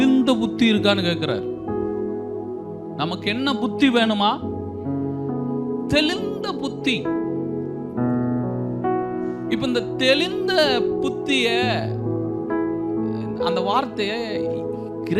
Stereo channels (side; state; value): both; identical; correlation 1.00